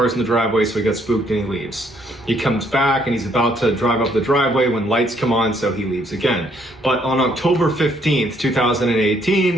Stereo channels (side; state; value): both; normal; correlation 0.68